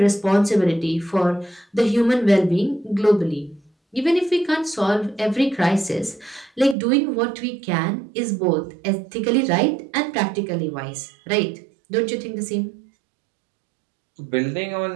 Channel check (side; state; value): left; drops out; at 6.8 s